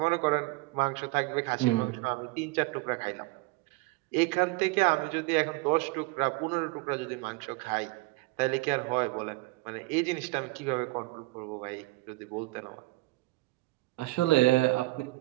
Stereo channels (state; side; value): quieter; left; 22.0 dB